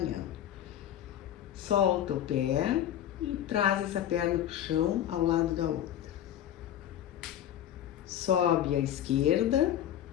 Solta o pé e traz essa perna pro chão ao lado da outra. Sobe a esquerda,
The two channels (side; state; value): right; quieter; 11.1 dB